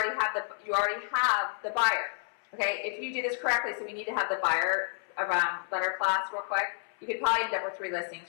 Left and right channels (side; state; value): right; silent; 58 dB below the other